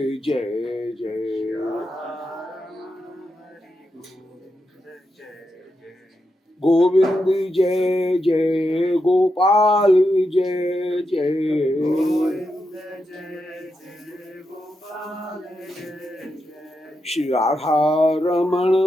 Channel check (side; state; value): both; normal; correlation 0.86